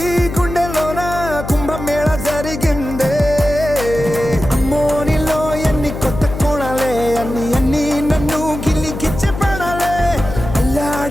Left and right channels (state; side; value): noise; left; hum, 8 dB below the sound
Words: గుండెలోన కుంభమేళ జరిగిందే అమ్మో నీలో ఎన్ని కొత్త కోణాలే అన్ని నన్ను గిల్లిగిచ్చే ప్రాణాలే